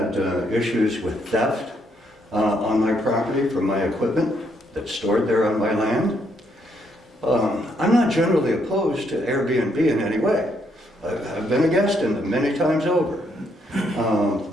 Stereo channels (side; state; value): both; normal; correlation 0.74